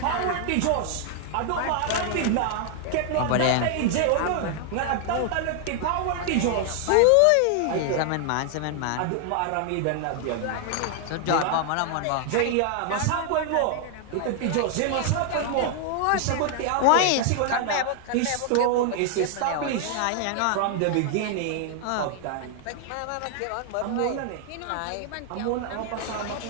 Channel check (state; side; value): different; both; correlation 0.00